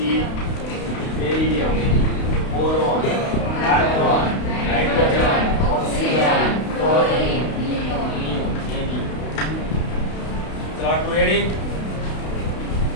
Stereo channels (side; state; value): right; late; 32 ms